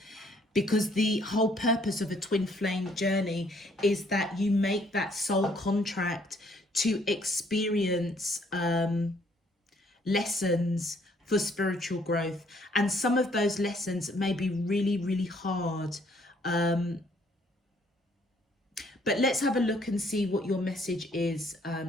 because the whole purpose of a twin flame journey is that you make that soul contract to experience lessons for spiritual growth. And some of those lessons may be really, really hard. But let's have a look and see what your message is,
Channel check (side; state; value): both; normal; correlation 0.65